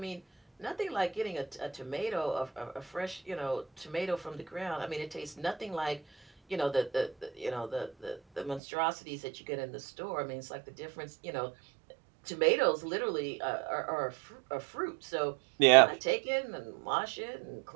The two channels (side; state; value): left; drops out; at 8.6 s